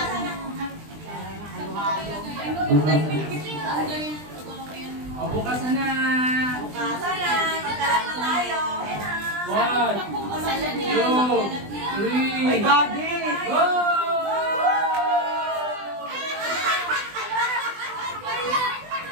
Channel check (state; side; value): late; left; 20 ms